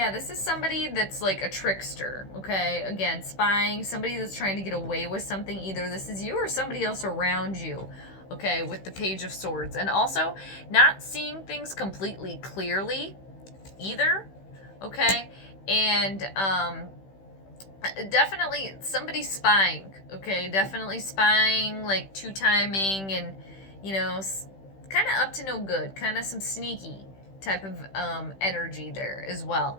this is somebody that's like a trickster, okay? Again, spying, somebody that's trying to get away with something. Either this is you or somebody else around you, okay, with the Page of Swords. And also not seeing things completely clearly either, okay? And definitely somebody spying, okay? Definitely spying, like two-timing and, you know, kind of up to no good, kind of some sneaky type of energy there as well.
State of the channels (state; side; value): late; right; 15 ms